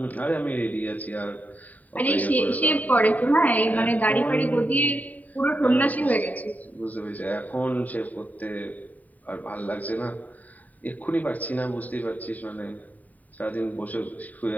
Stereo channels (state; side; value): late; right; 0.075 ms